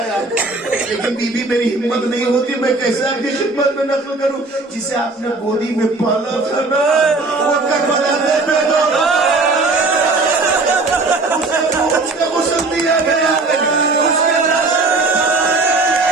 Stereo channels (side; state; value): left; quieter; 3.4 dB